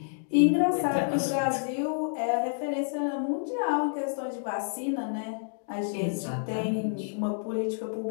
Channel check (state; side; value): silent; right; digital silence